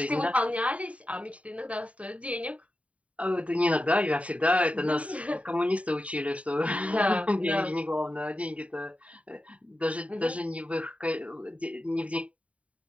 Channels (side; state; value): left; late; 0.066 ms